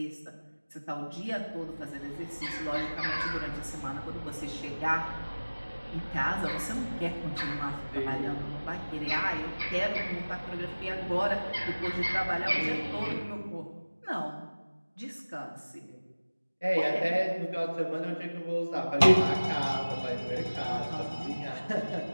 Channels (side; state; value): both; inverted; correlation -1.00